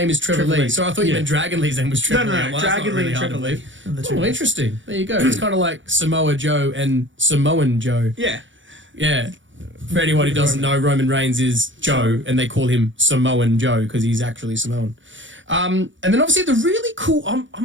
is Trevor Trevor Lee. Lee. So I thought you Yeah. meant Dragon Lee's name was Trevor Lee. no, I'm like, that's not Dragon Lee really and hard to Trevor Lee. believe. are the two Oh, names. interesting. There you go. It's kind of like Samoa Joe and Samoan Joe. Yeah. Yeah. For anyone who doesn't know, Roman Reigns is Joe, and they call him Samoan Joe because he's actually Samoan. And then obviously the really cool.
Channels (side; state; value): left; late; 0.56 ms